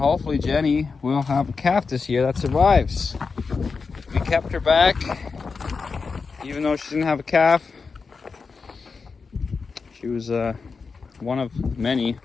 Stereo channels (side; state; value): right; quieter; 4.9 dB